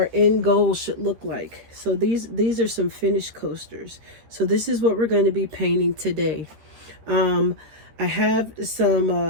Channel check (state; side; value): late; left; 13 ms